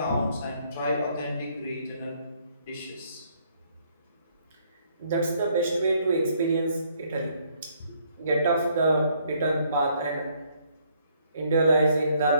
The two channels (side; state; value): both; inverted; correlation -0.67